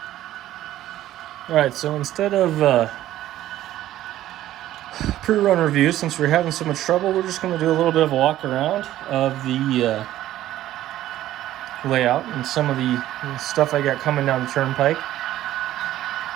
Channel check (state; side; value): quieter; left; 13.7 dB